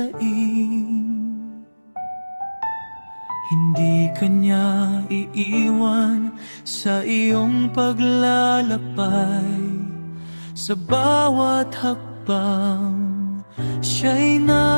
Hindi kanya iiwan sa iyong paglalakbay. Sa bawat hakbang, siya'y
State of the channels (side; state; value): both; inverted; correlation -1.00